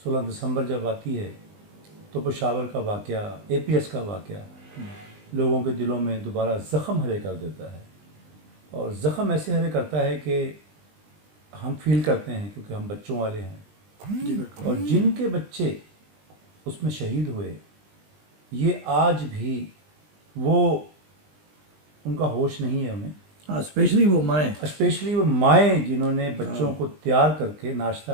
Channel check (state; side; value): late; left; 20 ms